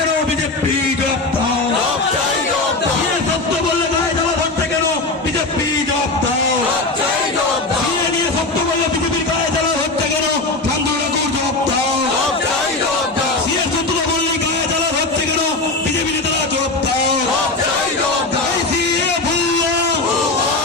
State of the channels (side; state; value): right; quieter; 3.3 dB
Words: বিজেপি জব্দ। সত্য বললে গায়ে জ্বালা ধরতে কেন? বিজেপি জব্দ। নিয়ে সত্য বললে বিজেপির গায়ে জ্বালা ধরতে কেন? ঠাকুর জব্দ। সত্য বললে গায়ে জ্বালা ধরতে কেন? বিজেপি নেতারা জব্দ। এই সিএ ভুয়া,